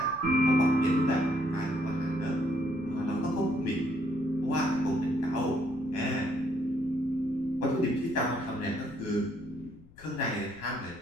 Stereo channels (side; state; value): left; noise; rumble, 24 dB below the sound